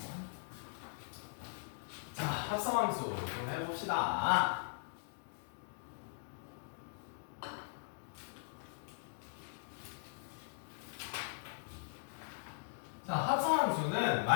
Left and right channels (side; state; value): right; silent; digital silence